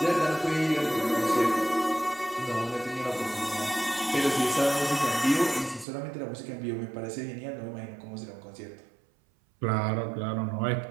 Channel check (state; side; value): drops out; left; at 5.9 s